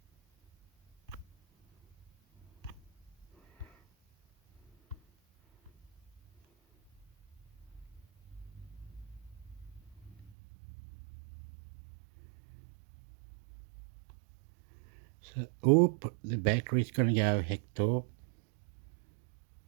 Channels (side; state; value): left; drops out; at 10.3 s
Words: So, oop, the battery's gonna go, Hector.